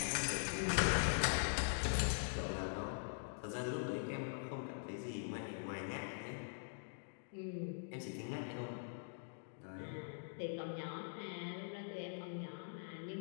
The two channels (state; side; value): silent; right; digital silence